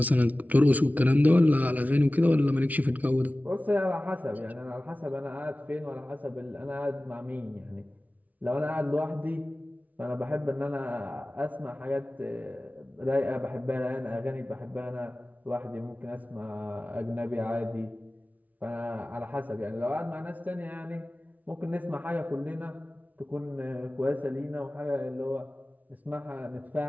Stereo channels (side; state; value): left; late; 0.073 ms